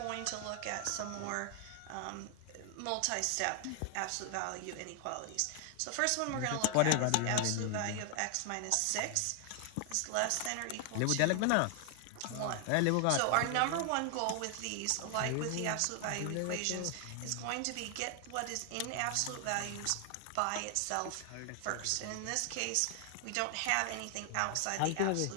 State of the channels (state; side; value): different; both; correlation 0.00